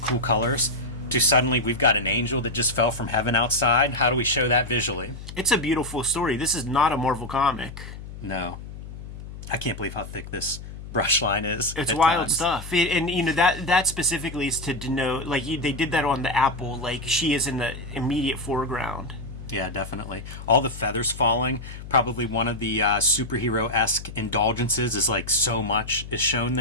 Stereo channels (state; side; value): noise; left; hum, 12 dB below the sound